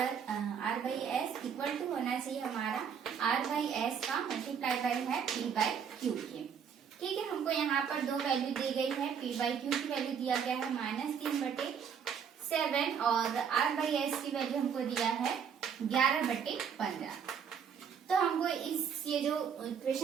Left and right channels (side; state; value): left; quieter; 7.4 dB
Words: R/S equal to होना चाहिए हमारा R/S का मल्टीप्लाई बाय है P/Q के। ठीक है, हमको यहाँ पर दो वैल्यू दी गई है। P/Q की वैल्यू दिया गया है -3/7 और R/S की वैल्यू हमको दिया है 11/15। तो हमको ये जो